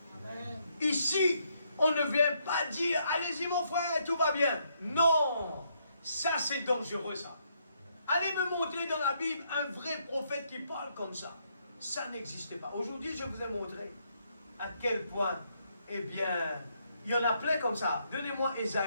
Ici, on ne vient pas dire allez-y mon frère, tout va bien. Non, ça c'est dangereux ça. Allez me montrer dans la Bible un vrai prophète qui parle comme ça. Ça n'existe pas. Aujourd'hui, je vous ai montré à quel point, eh bien, il y en a plein comme ça. Donnez-moi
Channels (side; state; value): both; inverted; correlation -0.74